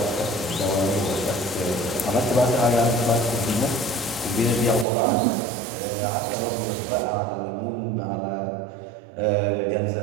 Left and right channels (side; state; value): left; drops out; at 4.9 s